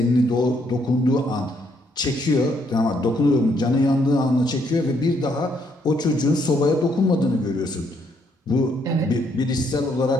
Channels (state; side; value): normal; both; correlation 0.72